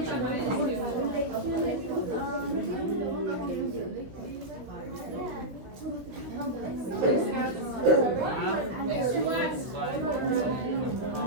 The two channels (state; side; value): late; left; 16 ms